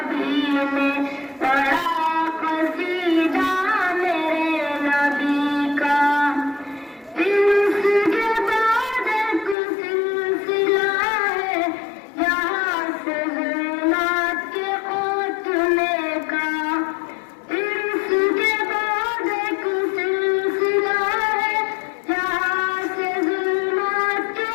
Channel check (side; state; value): right; drops out; at 9.6 s